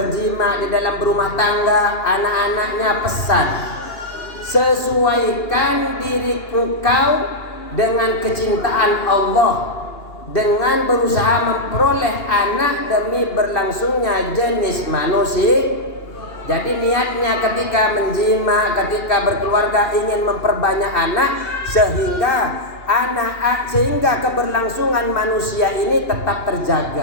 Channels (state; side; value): late; right; 2.8 ms